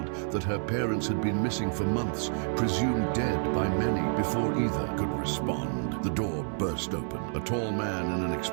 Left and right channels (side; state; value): left; silent; 58 dB below the other